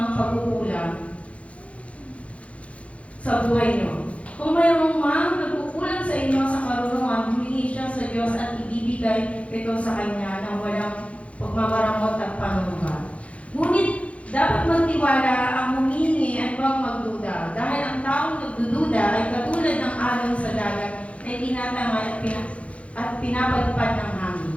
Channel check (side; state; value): right; late; 0.063 ms